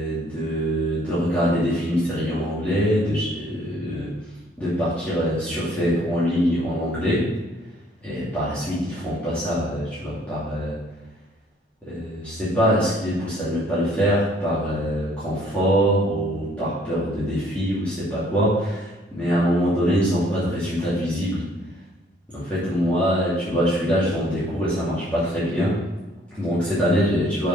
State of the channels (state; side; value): normal; both; correlation 0.61